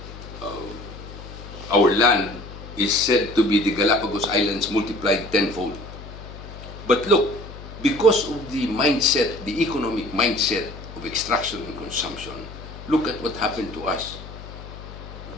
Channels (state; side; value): noise; left; hum, 14 dB below the sound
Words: Our land is said to be the Galapagos Islands multiplied tenfold. But look, because of the mindset, the economic mindset of extraction and consumption, look at what happened to us.